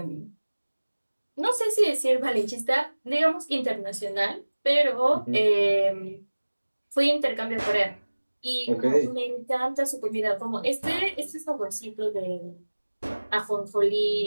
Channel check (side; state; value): both; inverted; correlation -1.00